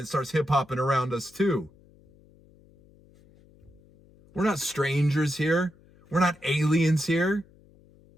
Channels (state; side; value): noise; left; hum, 28 dB below the sound